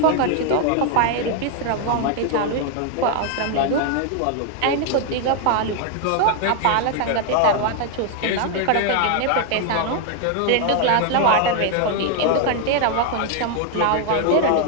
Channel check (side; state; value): both; different; correlation 0.01